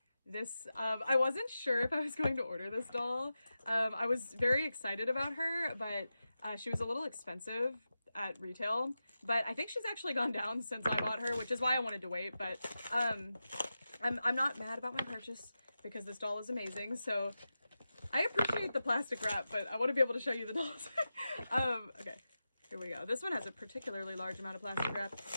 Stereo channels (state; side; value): inverted; both; correlation -0.92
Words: this, I wasn't sure if I was going to order this doll. I was very excited about her, but she was a little expensive at retail, but I think she's actually gone down since I bought her, which is why I wanted to wait. But I'm not mad about my purchase because this doll is amazing. So I appreciate the plastic wrap, but I want to be able to show you the dolls. Okay, here we go. This one has a particularly large amount of plastic wrap.